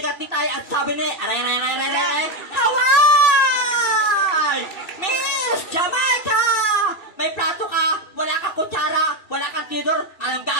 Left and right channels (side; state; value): right; late; 2.6 ms